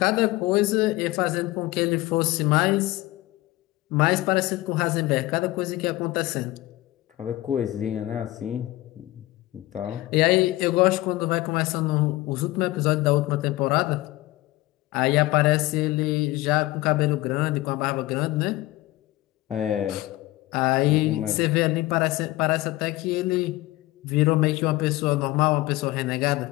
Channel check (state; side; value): quieter; right; 18.3 dB